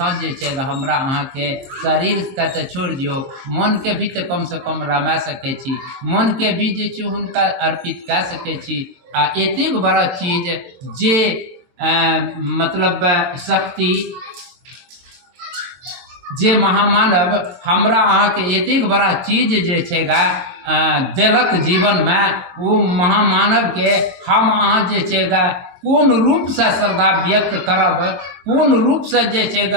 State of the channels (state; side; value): late; left; 22 ms